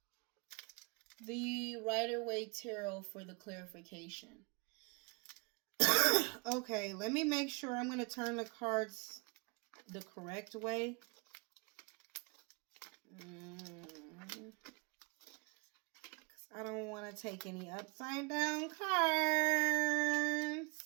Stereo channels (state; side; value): quieter; left; 32.4 dB